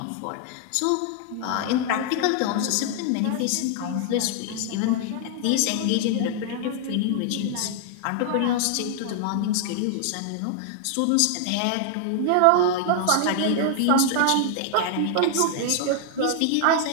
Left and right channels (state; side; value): different; both; correlation 0.00